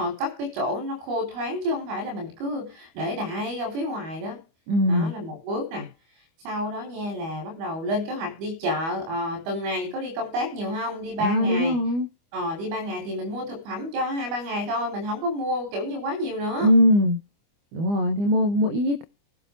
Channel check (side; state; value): left; late; 25 ms